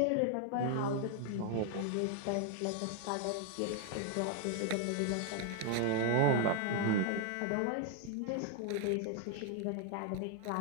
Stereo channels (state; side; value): different; both; correlation 0.01